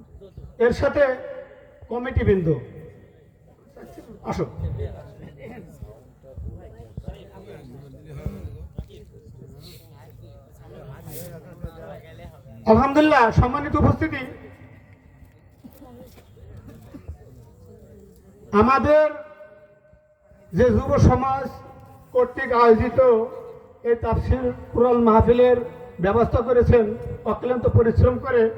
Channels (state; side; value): identical; both; correlation 1.00